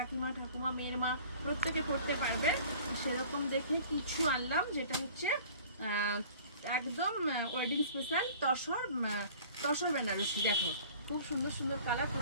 ঠাকুমা মেয়ের মা প্রত্যেকে পড়তে পারবে। সেরকম দেখে কিছু আনলাম, যেটা হচ্ছে একদম ওয়েডিং স্পেশাল তসর বেনারসি। দেখো খুব সুন্দর সুন্দর কালার,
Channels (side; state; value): both; inverted; correlation -0.47